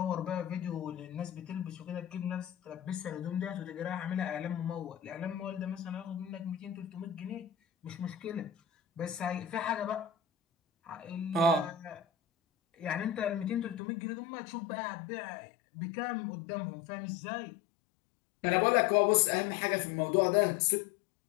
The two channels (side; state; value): right; drops out; at 13.8 s